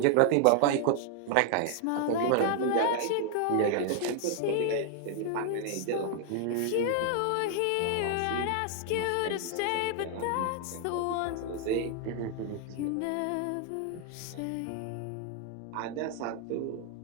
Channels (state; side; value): different; both; correlation 0.00